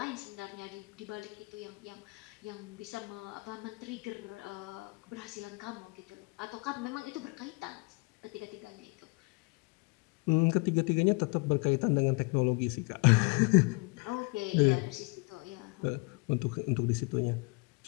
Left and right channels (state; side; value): quieter; right; 30.2 dB